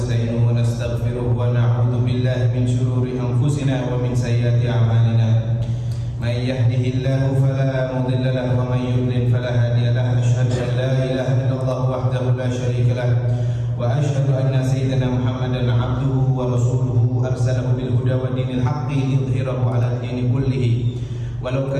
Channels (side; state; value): both; identical; correlation 1.00